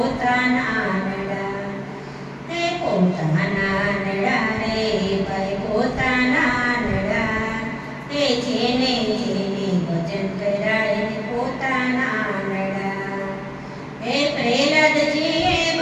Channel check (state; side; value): identical; both; correlation 1.00